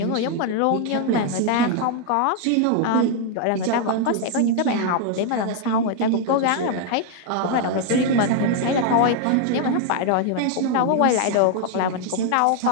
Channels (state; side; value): different; both; correlation 0.00